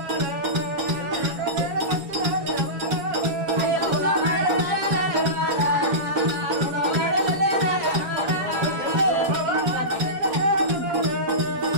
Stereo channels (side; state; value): left; late; 7.2 ms